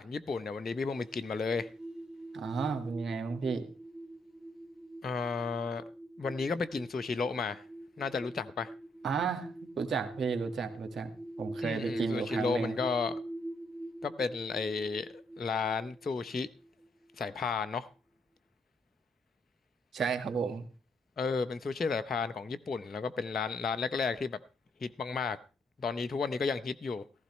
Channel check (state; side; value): normal; both; correlation 0.74